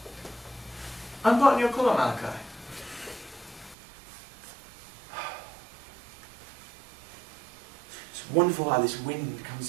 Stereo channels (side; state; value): left; drops out; at 3.8 s